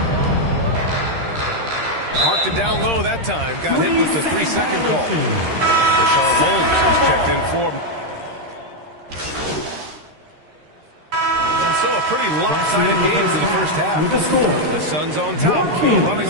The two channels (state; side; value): late; left; 13 ms